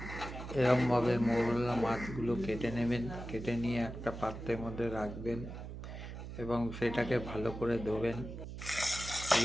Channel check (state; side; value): noise; right; hum, 9 dB below the sound